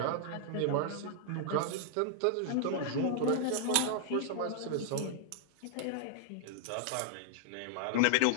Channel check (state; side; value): different; both; correlation -0.01